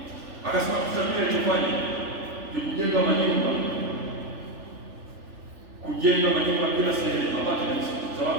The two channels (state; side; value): late; left; 3.4 ms